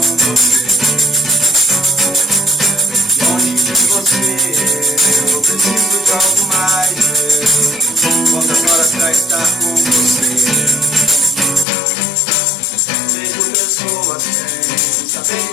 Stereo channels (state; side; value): drops out; right; at 11.7 s